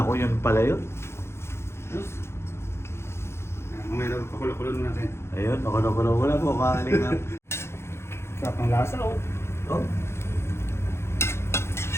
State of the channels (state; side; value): late; right; 0.12 ms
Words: yun pala yun. Yes. Mamaya daw, pakulo-kulo natin. Ayun, nakulo-kulo na po mga kalingap. Sarap ng lasa oh. Oh.